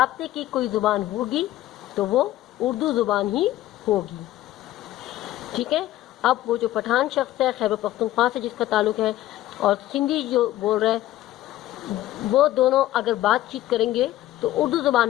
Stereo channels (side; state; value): right; quieter; 14.8 dB